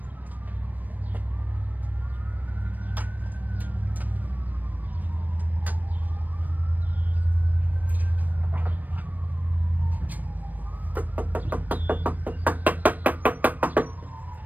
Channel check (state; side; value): late; left; 0.085 ms